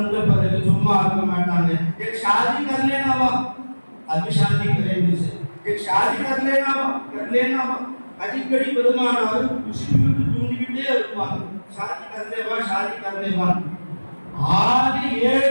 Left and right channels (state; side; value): inverted; both; correlation -1.00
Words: பிறகு சும்மா இருக்க மாட்டாங்க. एक शादी कर लेना वा, अभी शादी करेंगे से एक शादी कर लेना वा அடிக்கடி பெருமானார் முஸ்லிம்களுக்கு தூண்டிக்கிட்டே இருப்பாங்க. शादी कर ले वा. ஆதி